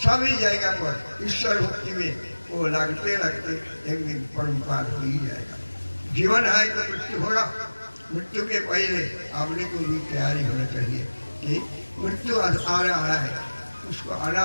जगह पर ईश्वर भक्ति में वो लगते लगते एक दिन परम्पार हो ही जाएगा। जीवन है तो मृत्यु होगा, मृत्यु के पहले आपने को भी तैयारी होना चाहिए कि मृत्यु आ रहा है, उसको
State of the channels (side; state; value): both; inverted; correlation -1.00